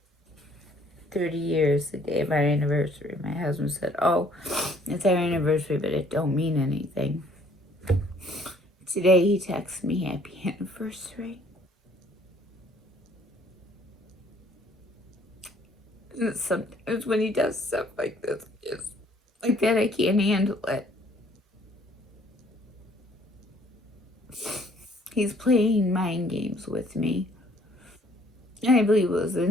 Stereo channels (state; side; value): normal; both; correlation 0.60